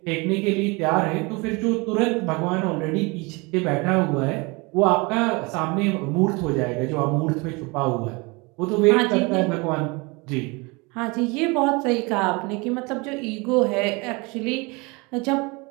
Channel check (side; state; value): left; quieter; 27.1 dB